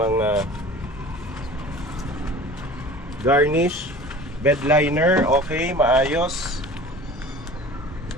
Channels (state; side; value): normal; both; correlation 0.42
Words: garnish, bed liner, okay, maayos.